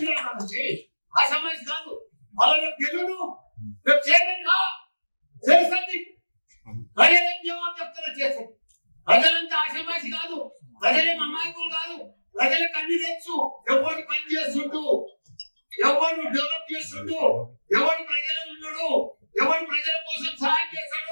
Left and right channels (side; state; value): both; inverted; correlation -1.00